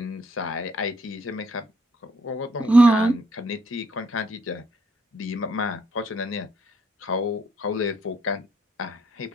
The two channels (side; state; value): both; normal; correlation 0.69